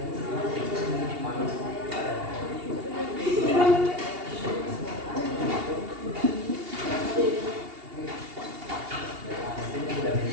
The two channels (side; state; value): left; late; 2.8 ms